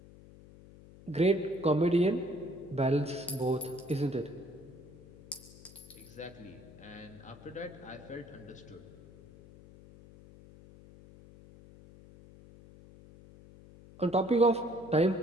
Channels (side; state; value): left; noise; hum, 20 dB below the sound